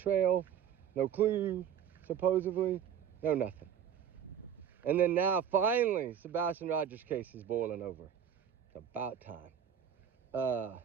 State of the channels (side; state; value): left; quieter; 8.6 dB